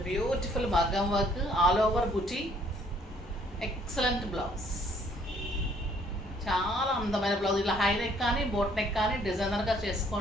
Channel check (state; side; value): normal; both; correlation 0.63